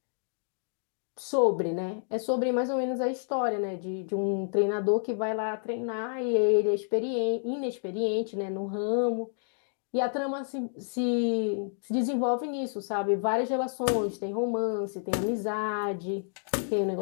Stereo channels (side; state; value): right; silent; digital silence